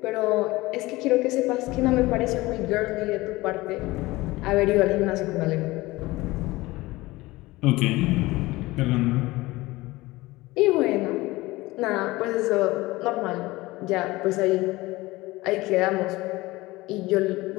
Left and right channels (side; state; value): right; quieter; 20.1 dB